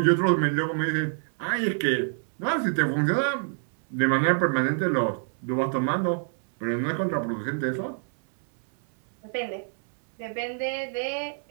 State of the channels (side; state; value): left; silent; 61 dB below the other